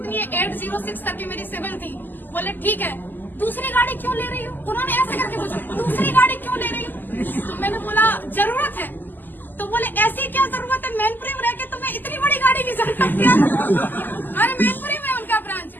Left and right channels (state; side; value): late; right; 0.089 ms